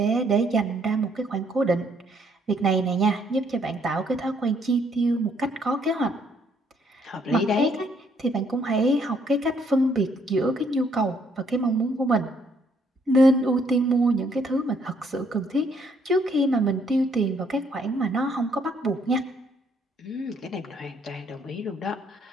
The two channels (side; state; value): both; normal; correlation 0.68